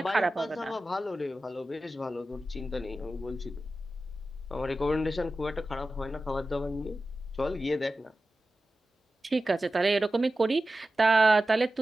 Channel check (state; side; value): normal; both; correlation 0.94